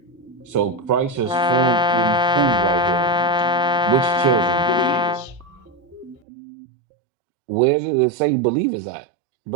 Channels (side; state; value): left; drops out; at 6.2 s